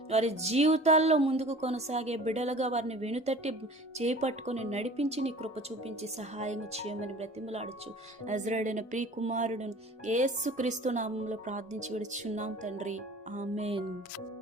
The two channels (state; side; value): normal; both; correlation 0.44